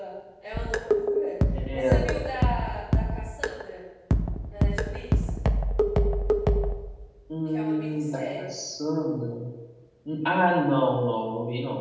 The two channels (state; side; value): identical; both; correlation 1.00